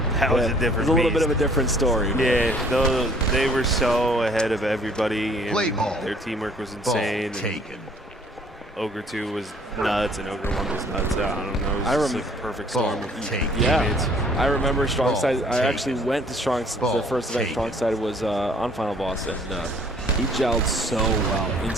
that was a different It was a little bit of a different story. Yeah, though they were so ahead of everybody, and their teamwork was insane. Ogre 2 was nuts, and Ogre 1 was nuts. I don't know. It was just like a perfect storm of teammates. I remember Strong Side. I actually went to Strong. The first event Strong Side was on Final Boss, and he gelled so well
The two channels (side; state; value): both; normal; correlation 0.57